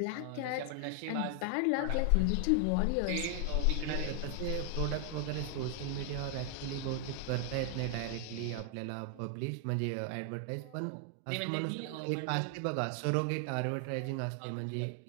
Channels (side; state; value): both; different; correlation 0.00